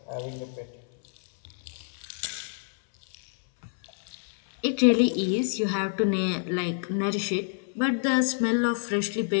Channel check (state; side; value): silent; right; 60 dB below the other